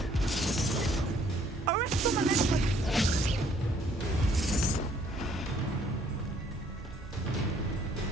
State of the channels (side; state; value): both; normal; correlation 0.63